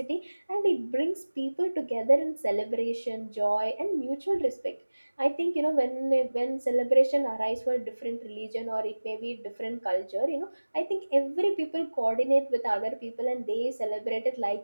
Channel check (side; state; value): both; inverted; correlation -1.00